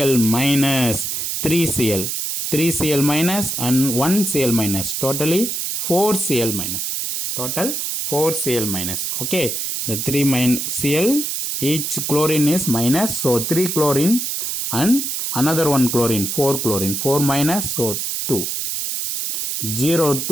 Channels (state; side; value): noise; right; hiss, 2 dB below the sound